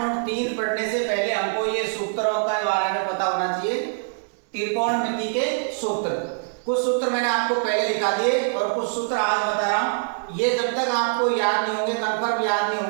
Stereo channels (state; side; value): silent; left; digital silence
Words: पढ़ने से पहले हमको ये सूत्रों के बारे में पता होना चाहिए। त्रिकोणमिति के सूत्र, कुछ सूत्र मैंने आपको पहले दिखा दिए और कुछ सूत्र आज बता रहा हूँ। ये जब तक आपको याद नहीं होंगे, कंफर्म याद नहीं